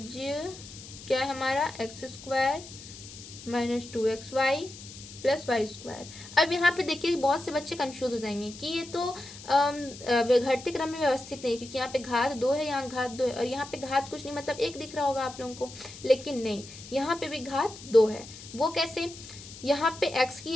क्या है हमारा, x square minus 2xy plus y square. अब यहाँ पे देखिए बहुत से बच्चे कंफ्यूज हो जाएंगे कि ये तो घटते क्रम में व्यवस्थित नहीं, क्योंकि यहाँ पे घात 2 है, यहाँ घात 2 है और यहाँ पे घात कुछ नहीं, मतलब 1 दिख रहा होगा आप लोगों को। लेकिन नहीं, यहाँ पे भी घात 2 है। वो कैसे? यहाँ पे x की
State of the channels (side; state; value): left; noise; hiss, 15 dB below the sound